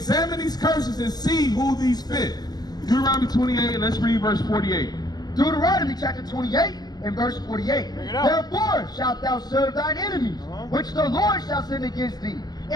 these curses and see who these fit. Deuteronomy 28, let's read verse 48. Deuteronomy chapter 28 and verse 48. Therefore shalt thou serve thine enemies, which the Lord shall send against thee,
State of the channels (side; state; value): right; late; 0.20 ms